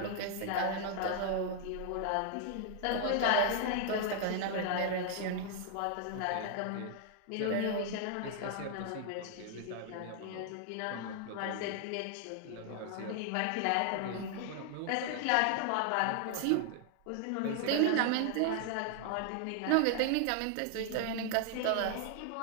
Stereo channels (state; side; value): different; both; correlation 0.00